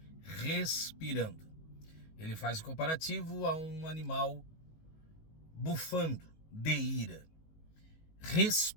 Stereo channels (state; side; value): late; right; 19 ms